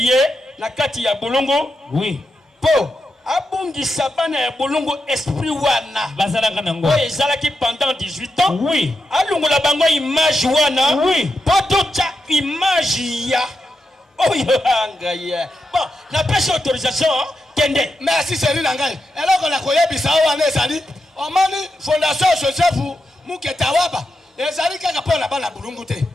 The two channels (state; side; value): normal; both; correlation 0.87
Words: la kati ya bolongo. Oui. Po abungisa bana ya bolongo esprit wana bazalaka nango ezalaki pendant 18 ans. Oui. Alungola bango image wana. Oui. Potocha image ya oyo anga ya bon na pêche autorisation kende merci c'est na ngai eloko na koyebisa wana ezali omani fondation Joseph Moke Tawaba ezali kaka pona bana bulungu te